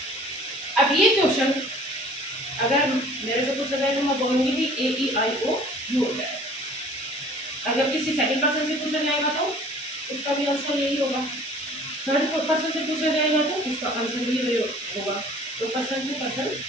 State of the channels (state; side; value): normal; both; correlation 0.50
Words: अब ये क्वेश्चन अगर मेरे से पूछा जाए तो मैं बोलूंगी कि ए ई आई ओ यू होता है। अगर किसी सेकंड पर्सन से पूछा जाएगा तो उसका भी आंसर यही होगा, थर्ड पर्सन से पूछा जाएगा तो उसका आंसर भी यही होगा, तो पर्सन टू पर्सन